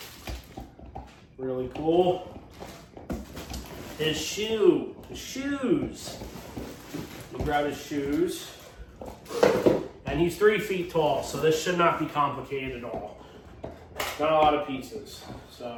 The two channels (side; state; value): both; identical; correlation 1.00